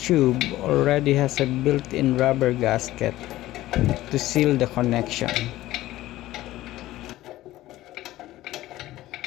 already has a built-in rubber gasket to seal the connection.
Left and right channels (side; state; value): right; quieter; 15.9 dB